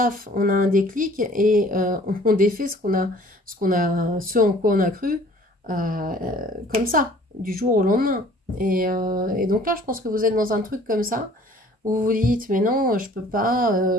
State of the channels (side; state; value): both; normal; correlation 0.53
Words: on a un déclic et on défait ce en quoi on a cru comme ça, du jour au lendemain. Et donc là, je pense que vous êtes dans un truc comme ça, où vous vous dites, mais non, je peux